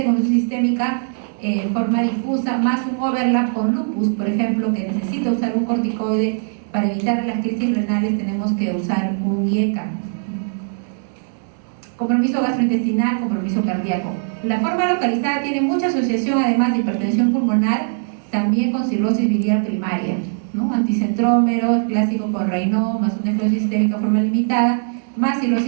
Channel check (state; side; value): silent; left; digital silence